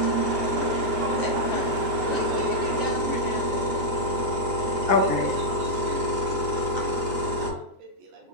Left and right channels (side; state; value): left; late; 9.8 ms